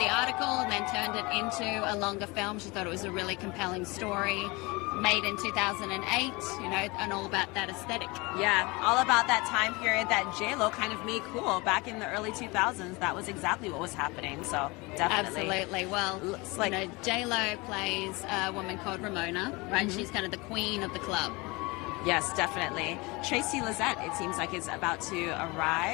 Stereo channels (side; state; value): right; quieter; 25.1 dB